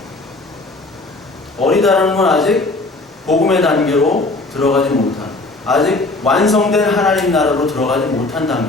어리다라는 건 아직 복음의 단계로 들어가지 못한, 아직 완성된 하나님 나라로 들어가지 못한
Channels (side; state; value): right; quieter; 3.1 dB